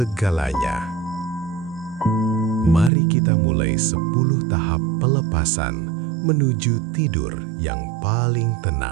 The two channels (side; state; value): left; drops out; at 2.9 s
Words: Mari kita mulai 10 tahap pelepasan menuju tidur yang paling